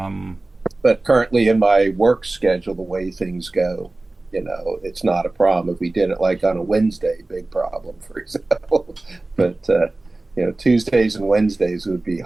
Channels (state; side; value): quieter; left; 3.0 dB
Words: But currently in my work schedule, the way things go, it's not a problem. If we did it like on a Wednesday, big problem, for example. But, Tuesdays and Wednesdays would be